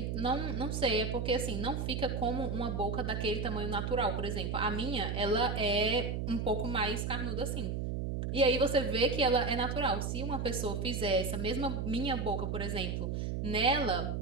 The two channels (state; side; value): noise; right; hum, 2 dB below the sound